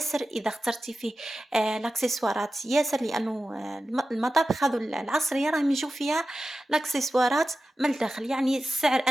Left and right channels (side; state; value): both; normal; correlation 0.93